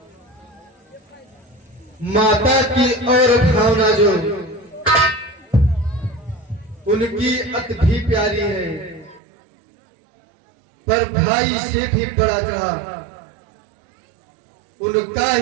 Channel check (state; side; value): drops out; left; at 9.2 s